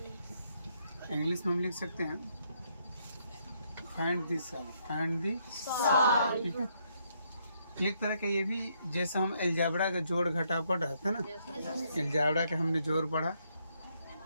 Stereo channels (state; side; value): inverted; both; correlation -0.73